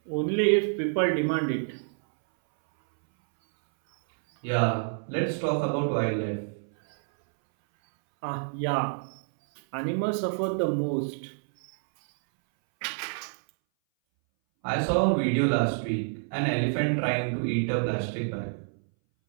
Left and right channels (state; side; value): silent; left; 60 dB below the other